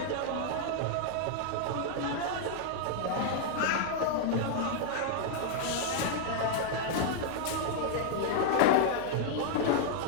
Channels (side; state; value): both; different; correlation -0.01